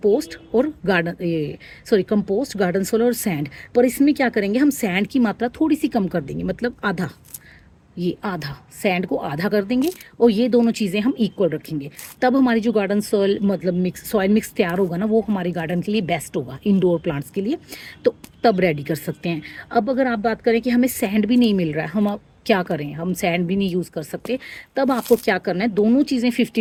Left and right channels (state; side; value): identical; both; correlation 1.00